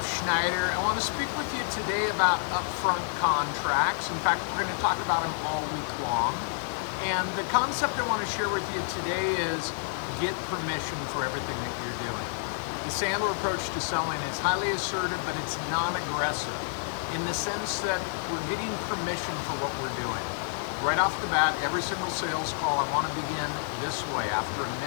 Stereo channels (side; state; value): right; silent; digital silence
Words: Schneider. I want to speak with you today about upfront contracts. In fact, we're going to talk about them all week long. And the concept I want to share with you today is get permission for everything that you're doing. The Sandler approach to selling is highly assertive, but it's non-aggressive in the sense that we're getting permission for what we're doing. Right off the bat, every single sales call, I want to begin this way. After a